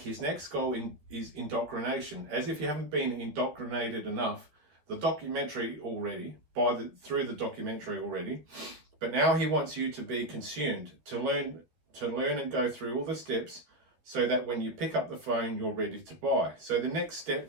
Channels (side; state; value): left; late; 12 ms